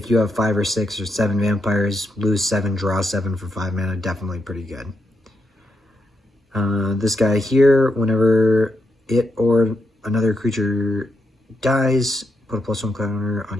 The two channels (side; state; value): both; normal; correlation 0.82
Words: you have 5 or 6 or 7 vampires, lose 7, draw 7 for 5 mana, definitely pretty good. This guy here, whenever it or another creature dies, put a +1 counter on